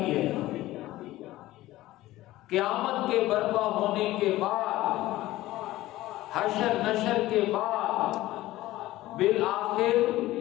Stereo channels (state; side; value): quieter; right; 16.6 dB